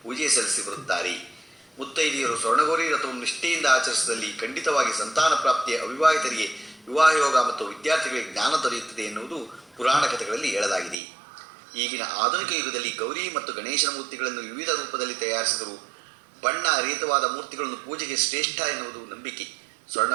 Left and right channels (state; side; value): drops out; left; at 11.0 s